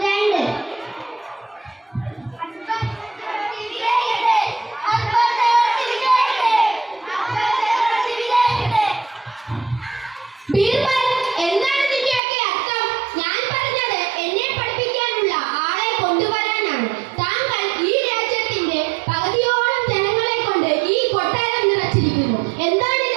2. ബീർബൽ, എന്താണ് നിന്റെയൊക്കെ അർത്ഥം? ഞാൻ പറഞ്ഞത് എന്നെ പഠിപ്പിക്കാനുള്ള ആളെ കൊണ്ടുവരാനാണ്. താങ്കൾ ഈ രാജ്യത്തിന്റെ പകുതിയോളം ജനങ്ങളെ കൊണ്ട് ഈ കൊട്ടാരം നിറച്ചിരിക്കുന്നു.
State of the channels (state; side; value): drops out; left; at 12.2 s